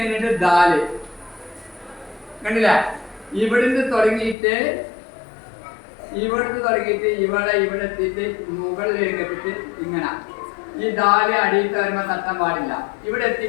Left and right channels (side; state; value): right; drops out; at 4.4 s